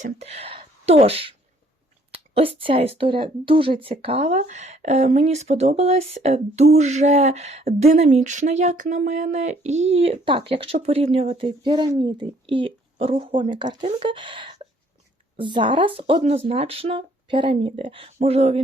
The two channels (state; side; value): normal; both; correlation 0.62